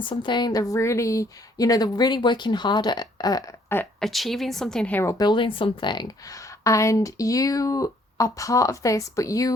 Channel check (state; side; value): normal; both; correlation 0.64